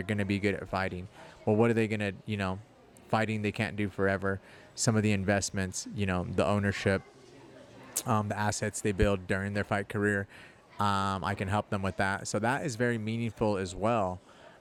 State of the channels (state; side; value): identical; both; correlation 1.00